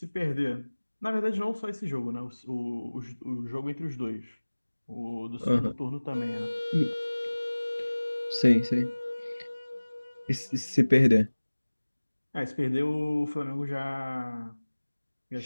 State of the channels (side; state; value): both; inverted; correlation -1.00